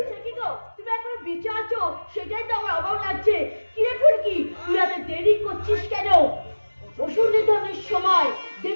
সে কি গো, তুমি এখন বিচারছো? সেটাই তো আমার অবাক লাগছে। কিরে ফুলকি, তুই এত দেরি করছিস কেন? অসুর নিধনের সময়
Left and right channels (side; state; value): both; inverted; correlation -1.00